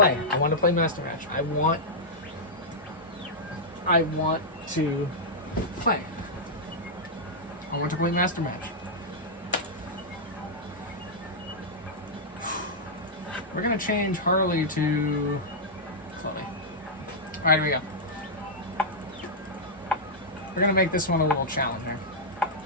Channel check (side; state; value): both; normal; correlation -0.08